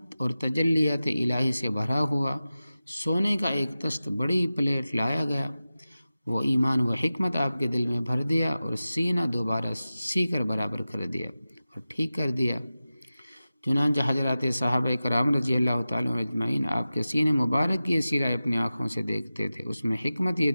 اور تجلیات الہی سے بھرا ہوا سونے کا ایک تست بڑی پلیٹ لایا گیا۔ وہ ایمان و حکمت آپ کے دل میں بھر دیا اور سینہ دوبارہ سی کر برابر کر دیا اور ٹھیک کر دیا۔ چنانچہ حضرات صحابہ کرام رضی اللہ تعالیٰ عنہ اجمعین آپ کے سینہ مبارک کی سیرہ اپنی آنکھوں سے دیکھتے تھے۔ اس میں حکمت یہ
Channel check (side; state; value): both; inverted; correlation -0.95